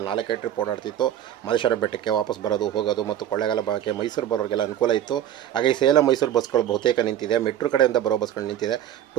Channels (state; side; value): quieter; left; 11.1 dB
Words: 4 ಟ್ರಿಪ್ ಓಡಾಡ್ತಿತ್ತು. ಮಹದೇಶ್ವರ ಬೆಟ್ಟಕ್ಕೆ ವಾಪಸ್ ಬರೋದು ಹೋಗೋದು. ಮತ್ತು ಕೊಳ್ಳೇಗಾಲ ಭಾಗಕ್ಕೆ ಮೈಸೂರು ಬರೋರಿಗೆಲ್ಲ ಅನುಕೂಲ ಇತ್ತು. ಹಾಗಾಗಿ ಸೇಲಂ ಮೈಸೂರು ಬಸ್ಗಳು ಬಹುತೇಕ ನಿಂತಿದೆ. ಮೆಟ್ರೋ ಕಡೆಯಿಂದ ಬರೋ ಬಸ್ಗಳು ನಿಂತಿದೆ.